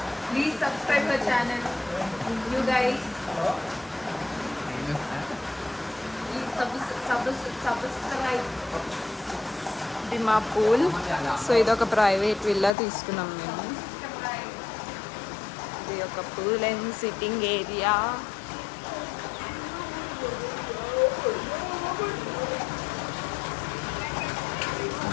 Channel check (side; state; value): right; drops out; at 12.8 s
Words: please subscribe the channel you guys. Subscribe. ఇది మా పూల్. సో ఇది ఒక ప్రైవేట్ విల్లా తీసుకున్నాం మేము. ఇది ఒక pool and sitting area.